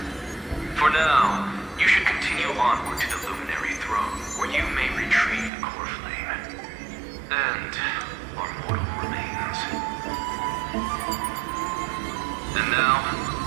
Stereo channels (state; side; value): drops out; left; at 5.5 s